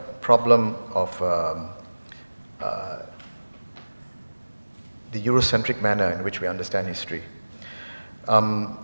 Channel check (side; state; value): both; inverted; correlation -1.00